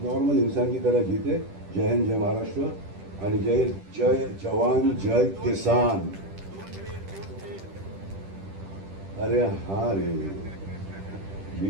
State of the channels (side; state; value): left; late; 10 ms